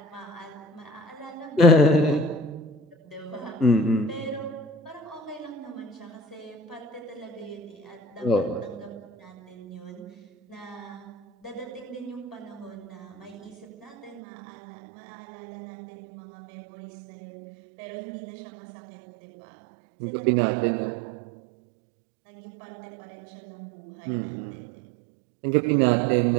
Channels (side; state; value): left; drops out; at 14.2 s